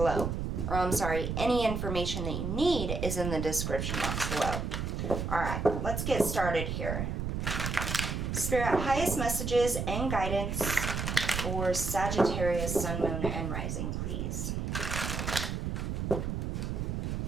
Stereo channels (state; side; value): noise; right; rumble, 2 dB below the sound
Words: Or I'm sorry, any information that you need is in the description box below. Alright, let's get started here. Spirit, highest messages and guidance for Sagittarius, Sun, Moon, and Rising, please.